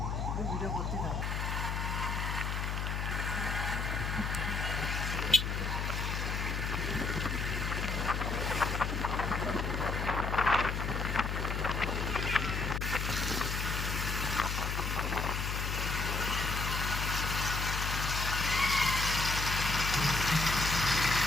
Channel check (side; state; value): left; noise; hum, 1 dB below the sound